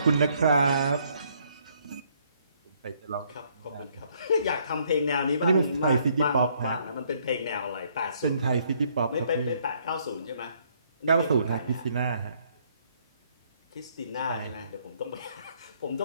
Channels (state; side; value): inverted; both; correlation -0.68